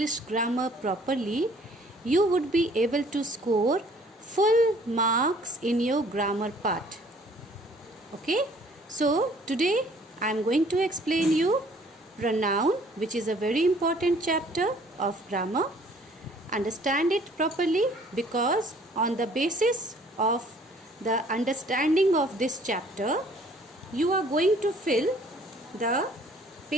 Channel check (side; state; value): both; normal; correlation 0.57